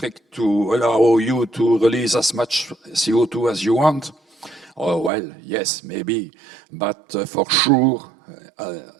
to allow you to release as much CO2 as you want. Oh, well, yes, maybe, but for sure,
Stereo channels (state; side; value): drops out; left; at 5.1 s